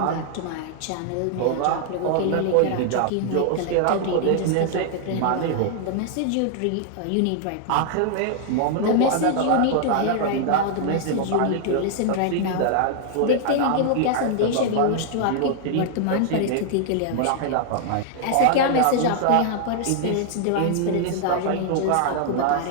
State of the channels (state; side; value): different; both; correlation 0.00